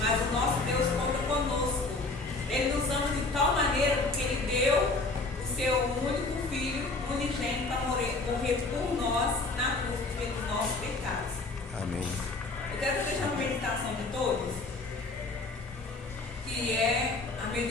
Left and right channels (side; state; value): right; quieter; 3.4 dB